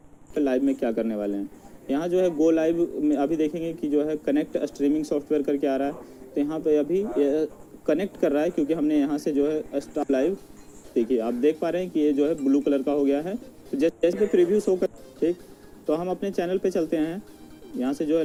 Live में क्या करने वाले हैं, यहाँ जो है गो लाइव में अभी देखेंगे कि जो है कनेक्ट स्ट्रीमिंग सॉफ्टवेयर करके आ रहा है। तो यहाँ पे अभी कनेक्ट कर रहा है, क्योंकि हमने यहाँ से जो है स्टार्ट लाइव, देखिए आप देख पा रहे हैं कि ये जो है ब्लू कलर का हो गया है। तो जैसे पे प्रीव्यू शो कर, ठीक, तो हम अपने चैनल पे चलते हैं। यहाँ से जो है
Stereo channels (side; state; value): both; identical; correlation 1.00